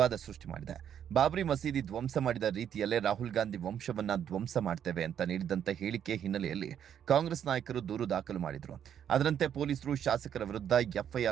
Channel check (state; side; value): quieter; left; 9.2 dB